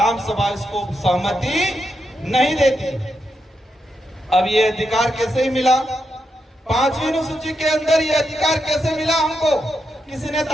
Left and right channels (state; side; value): normal; both; correlation 0.84